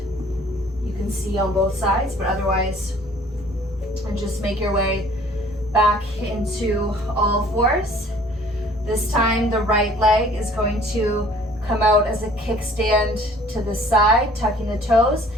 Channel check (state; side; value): normal; both; correlation 0.54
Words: you can see on both sides, but otherwise, and just make your way back into all fours. This time the right leg is going to come out as a kickstand to the side, tucking the toes,